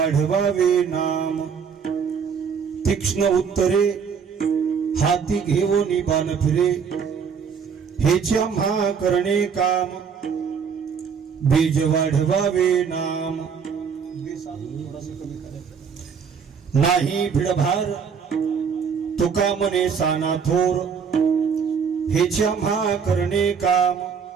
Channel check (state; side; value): quieter; left; 6.5 dB